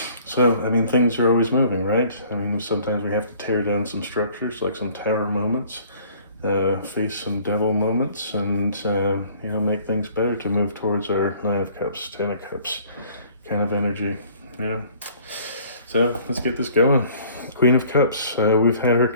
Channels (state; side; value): inverted; both; correlation -0.55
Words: So, things are always moving, right? Sometimes we have to tear down some structures, like some tower moments, face some devil moments, and, make things better to move towards our Nine of Cups, Ten of Cups kind of energy. Yeah. So, let's get this going. Queen of Cups. We've had her